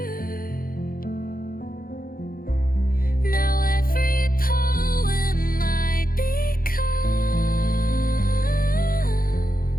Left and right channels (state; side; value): late; right; 0.42 ms